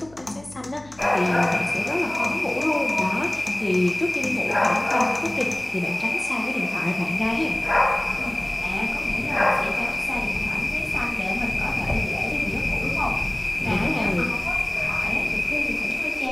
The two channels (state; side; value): noise; left; hum, 23 dB below the sound